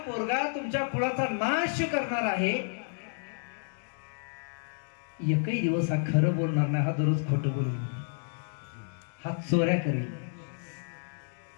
पोरगा तुमच्या कुळाचा नाश करणार आहे. एकही दिवस हा खरं बोलणार नाही. हा दररोज खोटं बोलून, हा चोऱ्या करेल,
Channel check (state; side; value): silent; right; digital silence